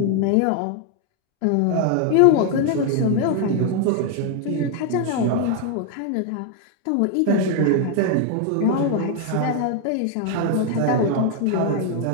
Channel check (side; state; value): both; different; correlation 0.01